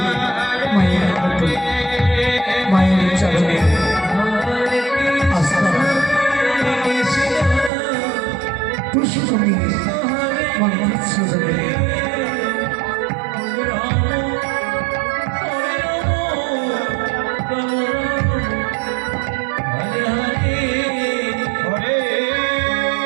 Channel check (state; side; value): drops out; left; at 7.7 s